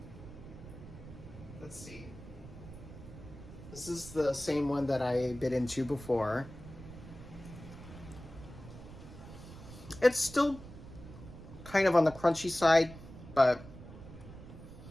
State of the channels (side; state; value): right; noise; rumble, 15 dB below the sound